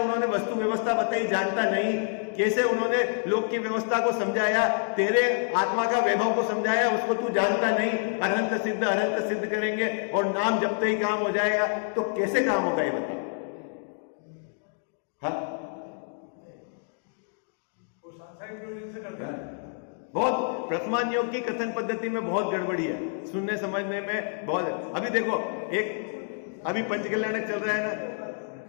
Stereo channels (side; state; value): right; silent; 60 dB below the other